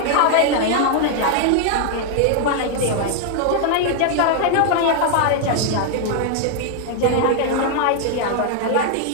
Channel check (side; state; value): both; different; correlation 0.00